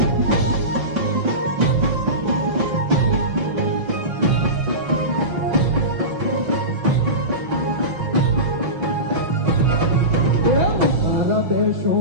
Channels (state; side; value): late; left; 5.9 ms